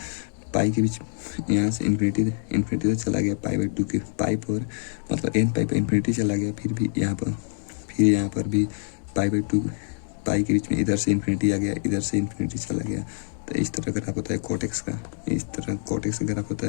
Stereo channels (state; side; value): silent; right; digital silence